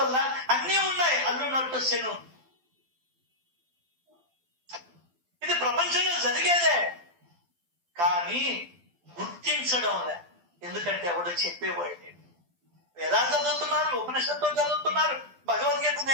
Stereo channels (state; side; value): late; left; 12 ms